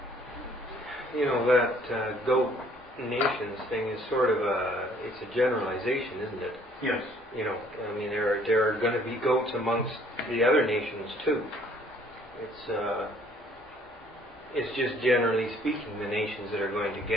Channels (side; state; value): both; normal; correlation 0.60